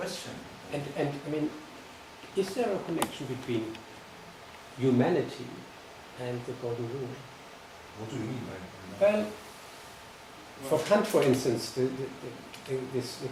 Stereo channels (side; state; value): both; identical; correlation 1.00